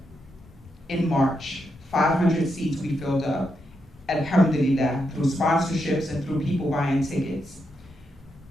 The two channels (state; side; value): normal; both; correlation 0.83